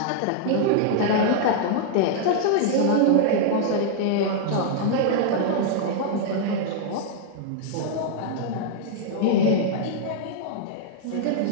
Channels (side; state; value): both; different; correlation -0.01